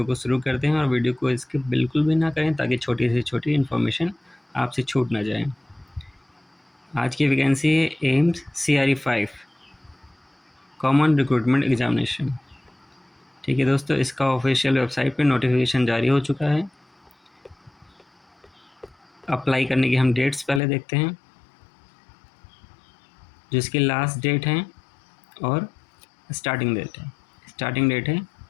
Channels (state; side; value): drops out; right; at 20.6 s